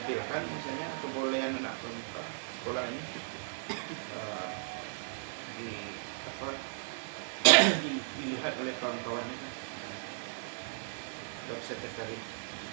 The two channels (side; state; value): left; silent; digital silence